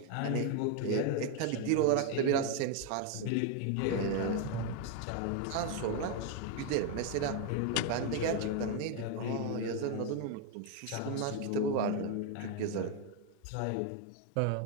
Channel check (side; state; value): both; different; correlation 0.01